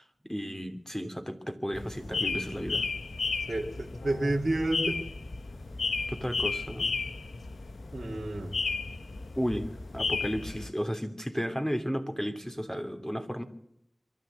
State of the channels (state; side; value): normal; both; correlation 0.94